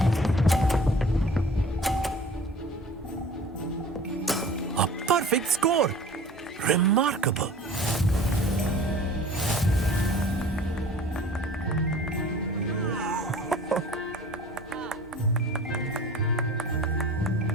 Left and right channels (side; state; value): both; normal; correlation 0.45